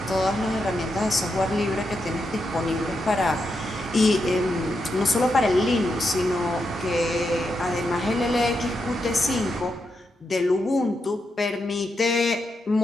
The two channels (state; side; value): normal; both; correlation 0.84